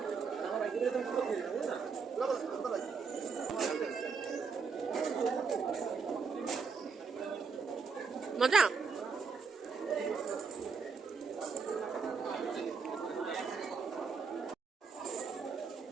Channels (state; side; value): quieter; left; 5.3 dB